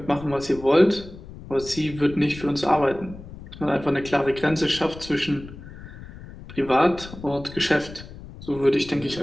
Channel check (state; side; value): noise; left; rumble, 15 dB below the sound